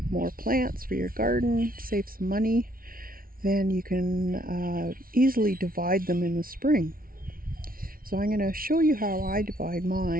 more plants for your garden, save some money, then you can easily divide them in the spring. So I'm going to show you how I divide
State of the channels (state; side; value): late; left; 0.42 ms